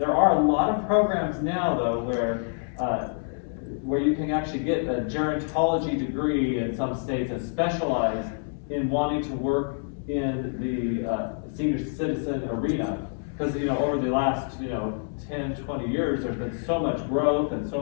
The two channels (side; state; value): right; silent; 60 dB below the other